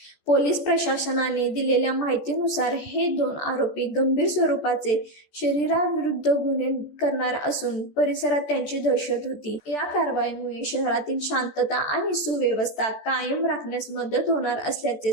पोलीस प्रशासनाने दिलेल्या माहितीनुसार हे 2 आरोपी गंभीर स्वरूपाचे शरीराविरुद्ध गुन्हे करणार असून परिसरात त्यांची दहशत होती. या कारवाईमुळे शहरातील शांतता आणि सुव्यवस्था कायम राखण्यास मदत होणार असल्याचे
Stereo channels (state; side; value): late; right; 14 ms